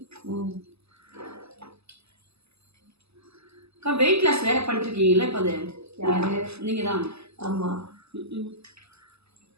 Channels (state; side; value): late; left; 0.79 ms